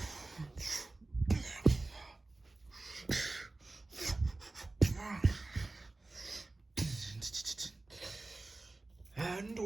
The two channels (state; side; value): quieter; left; 3.1 dB